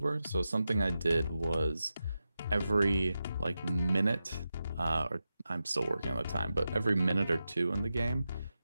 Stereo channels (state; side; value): inverted; both; correlation -0.91